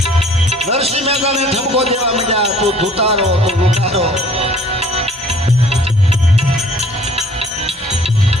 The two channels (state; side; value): normal; both; correlation 0.54